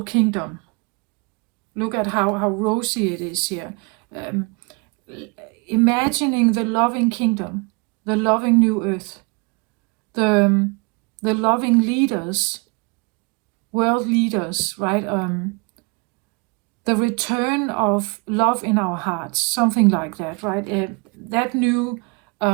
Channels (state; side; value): quieter; left; 29.9 dB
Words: kingdom. Look at how rosy it is here. Imagining the loving kingdom, the loving new earth, the loving leaders, world leaders, right? The return of love in our hearts, something like that, right? That new